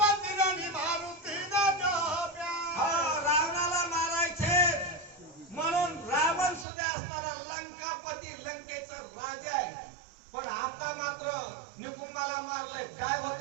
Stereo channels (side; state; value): left; drops out; at 6.7 s